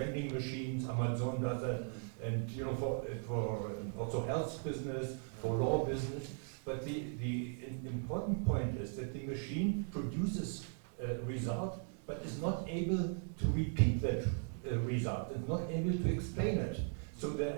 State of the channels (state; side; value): silent; left; 52 dB below the other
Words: machines. Amazon does that, and for also health business, for law business. But the important point is that the machine produces a result, but is not able to repeat that result and not able to explain it. So